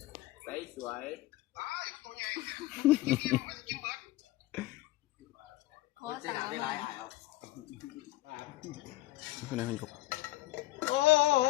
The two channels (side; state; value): right; quieter; 17.5 dB